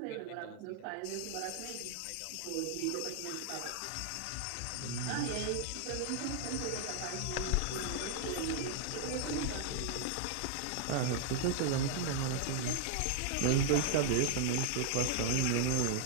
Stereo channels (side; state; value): both; different; correlation 0.00